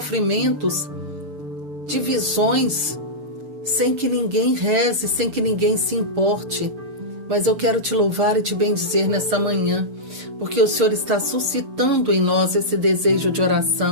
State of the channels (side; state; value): left; late; 6.9 ms